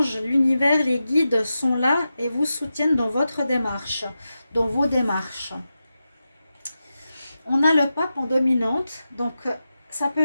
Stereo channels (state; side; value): inverted; both; correlation -0.91